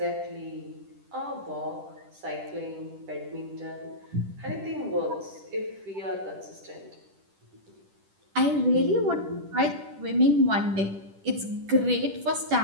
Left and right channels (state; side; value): late; left; 10 ms